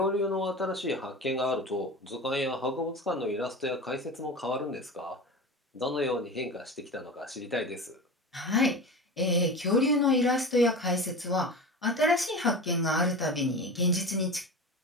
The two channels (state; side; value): normal; both; correlation 0.30